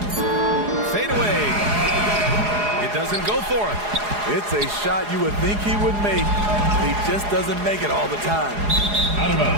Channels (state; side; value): late; left; 4.8 ms